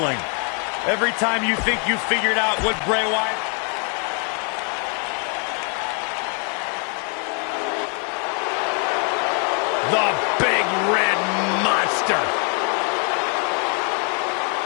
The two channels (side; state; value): right; quieter; 38.6 dB